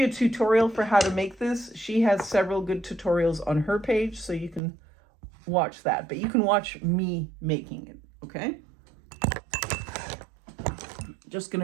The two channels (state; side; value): drops out; left; at 4.6 s